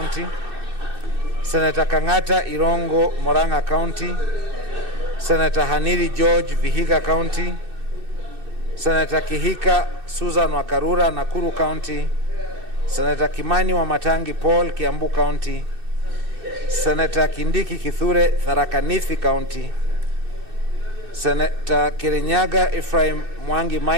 Senator Kangata Irongo, Moranga County. Senator Haniri George, Vihiga County. Senator Kihika Susan Wakarura, Nakuru County. Senator Kimani Wamatangi Paul, Kiambu County. Senator Kindiki Kithure, Tharaka Nithi County. Senator Kirinyaga Ephraim Mwangi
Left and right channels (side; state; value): left; late; 2.6 ms